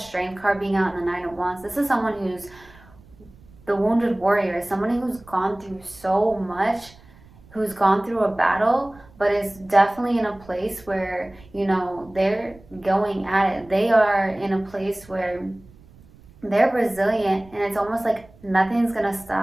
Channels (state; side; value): noise; right; rumble, 25 dB below the sound